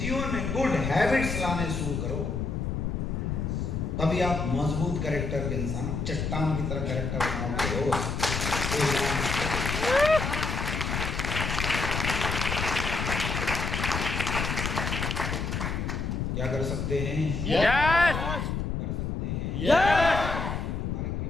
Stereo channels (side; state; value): left; noise; rumble, 2 dB below the sound